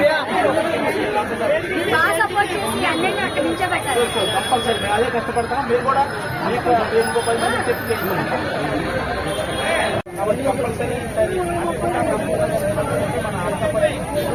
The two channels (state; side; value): identical; both; correlation 1.00